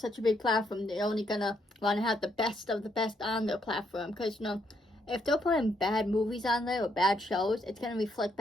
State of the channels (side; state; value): both; normal; correlation 0.74